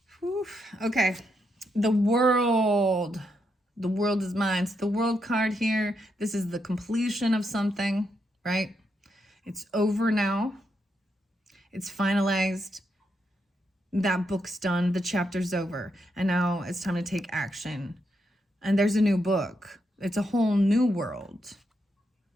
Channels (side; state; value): both; normal; correlation 0.81